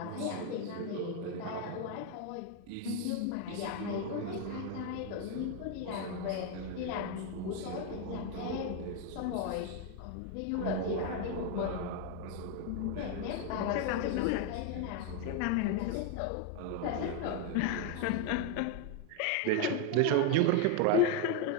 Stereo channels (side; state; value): both; different; correlation 0.02